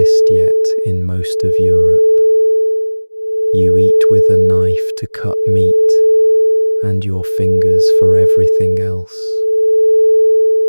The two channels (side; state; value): both; inverted; correlation -1.00